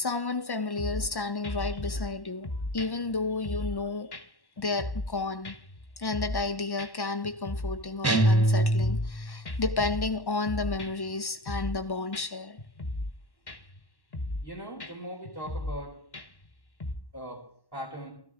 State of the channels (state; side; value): late; right; 1.1 ms